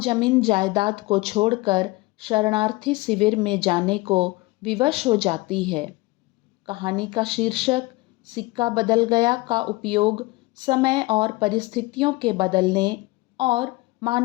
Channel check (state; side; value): quieter; right; 22.1 dB